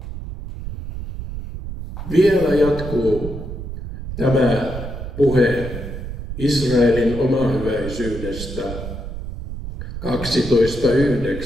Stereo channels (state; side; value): noise; right; rumble, 8 dB below the sound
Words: Vielä jatkuu tämä puhe Israelin omahyväisyydestä.